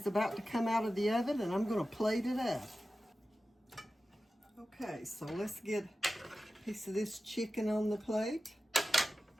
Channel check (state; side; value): normal; both; correlation 0.94